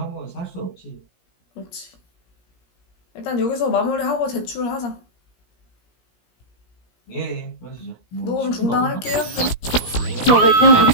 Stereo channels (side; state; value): right; late; 17 ms